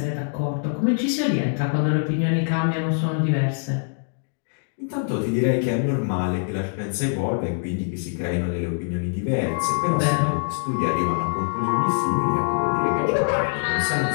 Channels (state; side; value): silent; right; digital silence